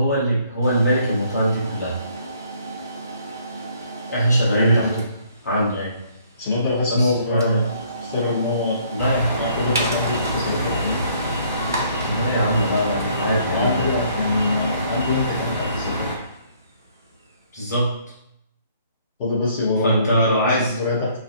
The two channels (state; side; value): inverted; both; correlation -0.63